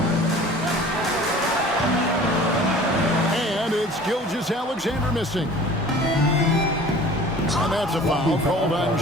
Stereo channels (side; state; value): both; normal; correlation 0.45